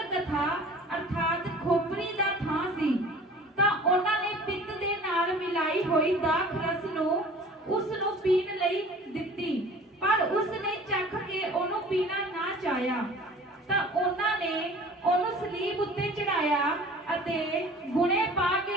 ਅਰਥਾਤ ਖੋਪਰੀ ਦਾ ਥਾਂ ਸੀ, ਤਾਂ ਉਹਨਾਂ ਨੇ ਪਿੱਤ ਦੇ ਨਾਲ ਮਿਲਾਈ ਹੋਈ ਦਾਖ ਰਸ ਨੂੰ ਉਸ ਨੂੰ ਪੀਣ ਲਈ ਦਿੱਤੀ, ਪਰ ਉਸ ਨੇ ਚੱਖ ਕੇ ਉਹਨੂੰ ਪੀਣਾ ਨਾ ਚਾਹਿਆ। ਤਾਂ ਉਹਨਾਂ ਨੇ ਉਹਨੂੰ ਸਲੀਬ ਉੱਤੇ ਚੜਾਇਆ ਅਤੇ ਗੁਣੇ ਪਾ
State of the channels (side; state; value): both; normal; correlation 0.46